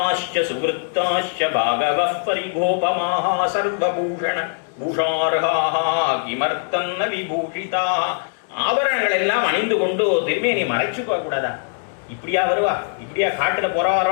சுகிருத்தாஷ்ச பாகவ பரிகோபமாக சர்வபூஷண பூஷார்ஹாஹ கிமர்த்தன்ன விபூஷிதா. ஆபரணங்கள் எல்லாம் அணிந்து கொண்டு திருமேனி மறைச்சு போக கூடாதா? இப்படியா வருவா? இப்படியா காட்டுல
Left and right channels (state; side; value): silent; right; digital silence